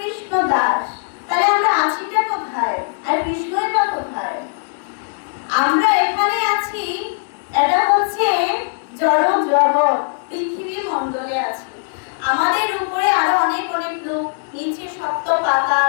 দাস। তাহলে আমরা আছিটা কোথায় আর কৃষ্ণই বা কোথায়? আমরা এখানে আছি, এটা হচ্ছে জড় জগৎ, পৃথিবী মণ্ডলে আছি। আমাদের উপরে আরো অনেক অনেক লোক, নিচে সপ্ত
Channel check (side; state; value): right; silent; 66 dB below the other